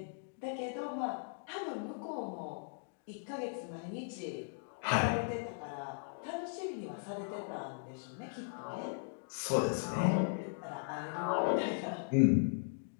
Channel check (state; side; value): silent; right; digital silence